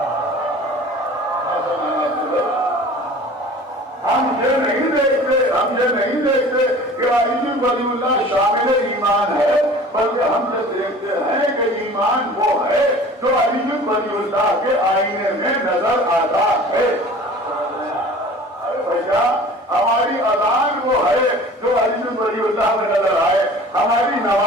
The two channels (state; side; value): normal; both; correlation 0.44